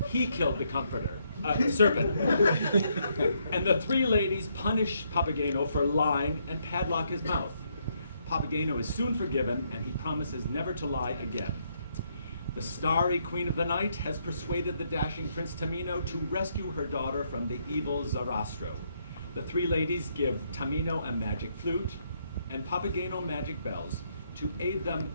he killed the serpent. And the three ladies punish Papageno for lying and padlock his mouth. Papageno is soon forgiven, and he promises never to lie again. The starry queen of the night has persuaded the dashing Prince Tamino to rescue her daughter from the evil Zarastro. The three ladies give Tamino a magic flute and Papageno magic bells to aid them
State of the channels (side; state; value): both; inverted; correlation -0.74